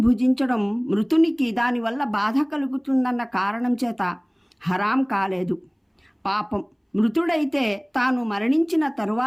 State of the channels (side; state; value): both; identical; correlation 1.00